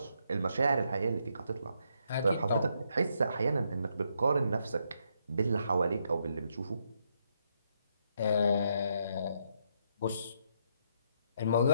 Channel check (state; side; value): inverted; both; correlation -0.75